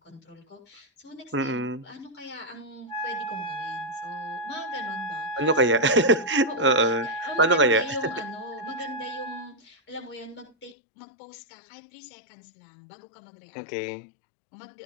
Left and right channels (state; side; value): drops out; right; at 10.8 s